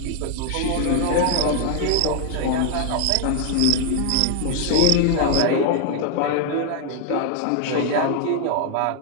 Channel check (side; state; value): both; different; correlation 0.00